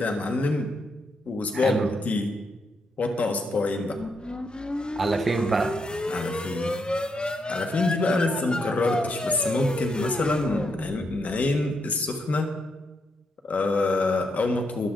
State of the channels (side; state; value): both; normal; correlation 0.79